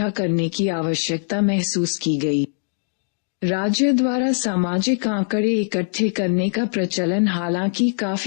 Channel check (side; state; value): right; silent; digital silence